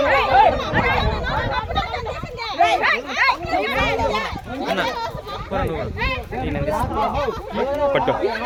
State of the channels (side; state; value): both; identical; correlation 1.00